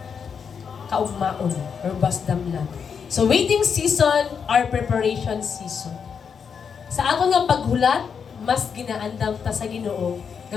kaugmaon or basdam lang. So waiting season or preparation season. Sa aton nga paghulat, mas ginaandam ta sa Ginoo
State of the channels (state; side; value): quieter; right; 6.6 dB